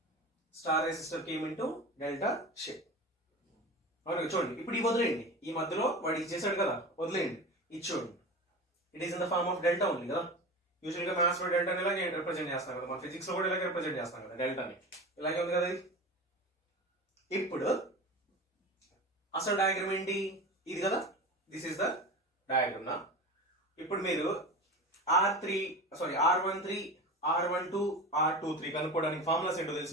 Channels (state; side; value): normal; both; correlation 0.30